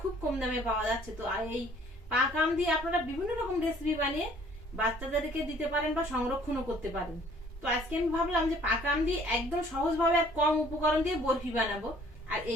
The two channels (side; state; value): both; normal; correlation 0.57